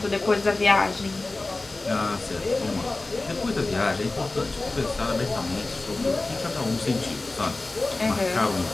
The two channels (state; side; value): quieter; right; 3.2 dB